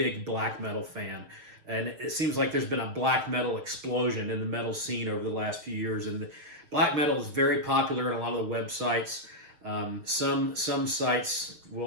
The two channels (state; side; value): late; left; 6.6 ms